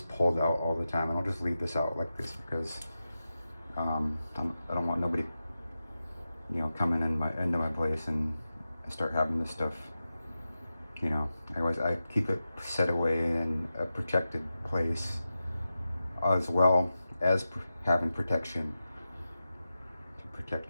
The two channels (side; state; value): both; inverted; correlation -0.92